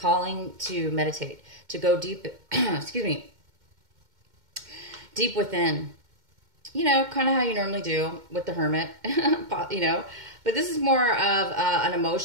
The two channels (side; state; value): left; late; 2.1 ms